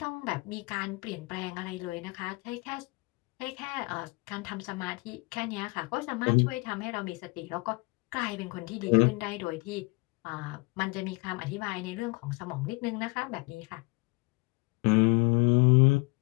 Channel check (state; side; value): quieter; right; 27.2 dB